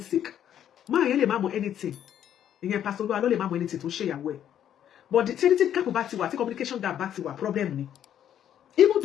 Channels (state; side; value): quieter; right; 10.2 dB